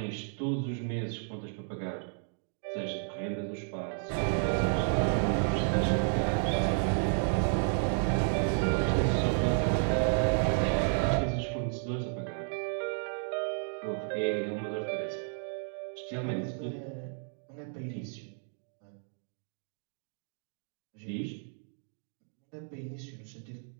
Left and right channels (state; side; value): silent; left; 56 dB below the other